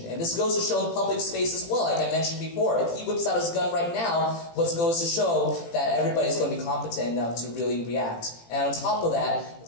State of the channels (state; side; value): late; right; 18 ms